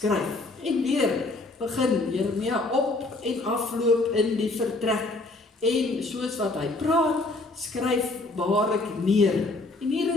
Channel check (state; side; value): quieter; right; 3.1 dB